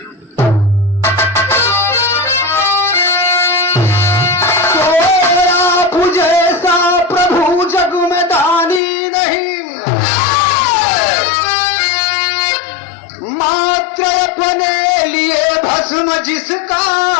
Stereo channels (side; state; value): right; drops out; at 8.8 s